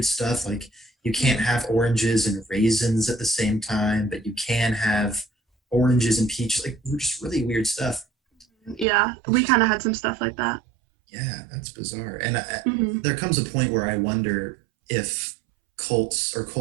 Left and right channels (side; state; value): left; drops out; at 8.8 s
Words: stuff, like you can't have oranges and raisins at the same time, but you can have oranges and peaches, like just really weird stuff. Yeah, we kind of had some stuff like that. Yeah, that's bizarre. And there comes a point where I wonder if cults or